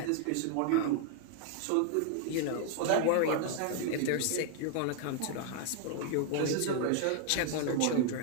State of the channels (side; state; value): both; different; correlation 0.00